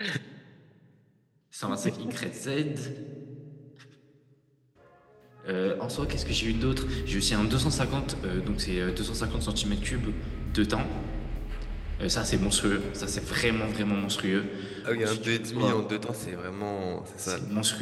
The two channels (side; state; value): both; identical; correlation 1.00